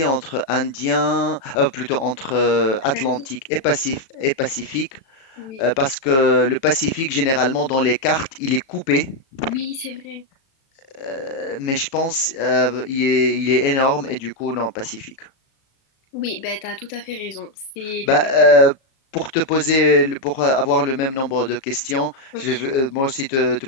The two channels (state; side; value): late; right; 37 ms